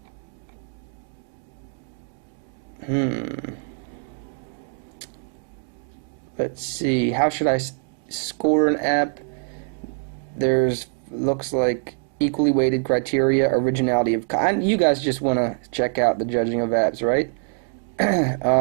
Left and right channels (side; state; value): left; silent; digital silence